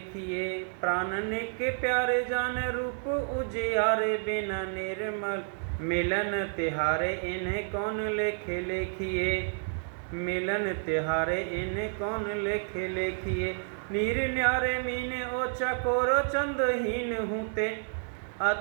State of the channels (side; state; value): left; silent; digital silence